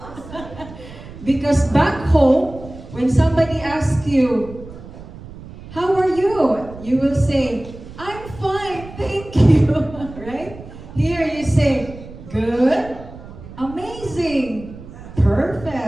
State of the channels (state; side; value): noise; right; rumble, 15 dB below the sound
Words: Because back home, when somebody asks you, how are you? You will say, I'm fine, thank you. Right? Here you say, good, amazing,